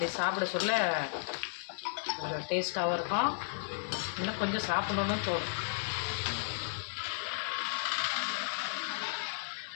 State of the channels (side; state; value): right; silent; digital silence